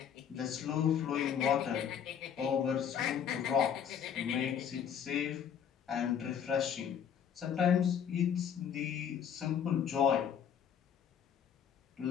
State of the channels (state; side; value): quieter; right; 8.3 dB